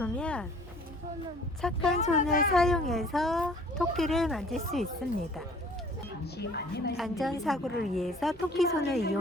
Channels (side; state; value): both; normal; correlation 0.53